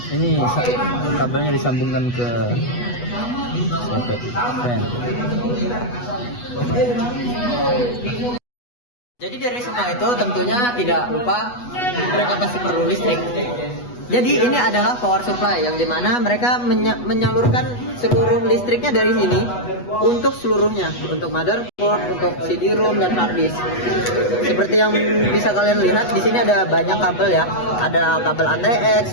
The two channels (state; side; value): late; right; 8.2 ms